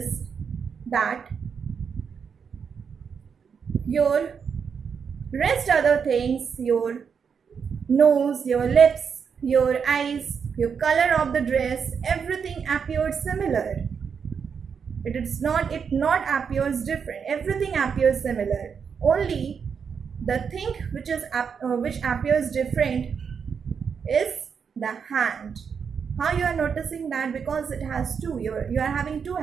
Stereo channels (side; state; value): left; quieter; 6.5 dB